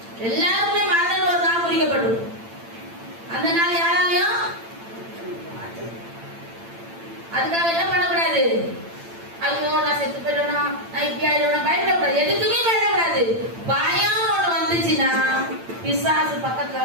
எல்லாருமே மரணம் ஒரு நாள் குறிக்கப்படும். அந்த நாள் யாராலையும் அதுக்காக என்ன பண்ணக்கூடாது? ஐயோ நான் செத்து போயிடுவேனா, நான் இப்படி ஆயிடுவேனா, பயப்படக்கூடாது. எதுக்குமே பயப்படக்கூடாது. பயம் ஒண்ணு வந்துச்சுன்னா பிசாசு பக்கத்துல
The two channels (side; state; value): left; late; 8.9 ms